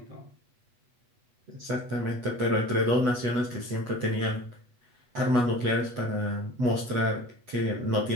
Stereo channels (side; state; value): left; late; 8.2 ms